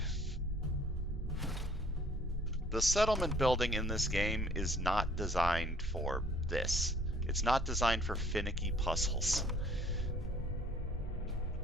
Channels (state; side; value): normal; both; correlation 0.58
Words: settlement building in this game is not designed for this. It's not designed for finicky puzzles.